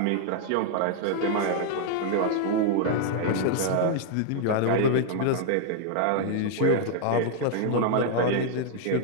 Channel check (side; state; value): both; different; correlation 0.00